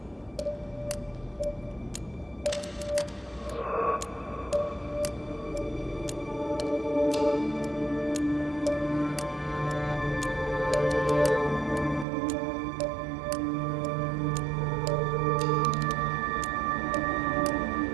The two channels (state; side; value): drops out; left; at 12.1 s